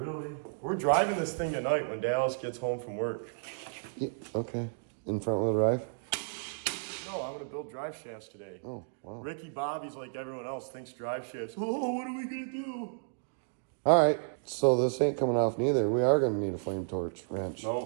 We're driving this thing tonight when Dallas gets home from work. Yeah, okay. In front wheel drive? No, I'm gonna build drive shafts today. Oh, wow. Ricky Bobby's like everyone else, thinks drive shafts. Oh, what are we gonna do? All right, so this ain't coming off neither. We are gonna need a flame torch wrench.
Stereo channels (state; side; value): silent; left; digital silence